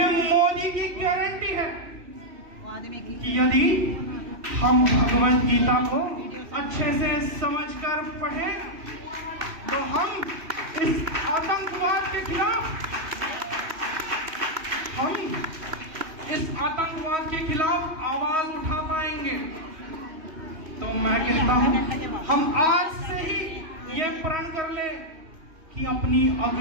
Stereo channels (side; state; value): left; late; 3.1 ms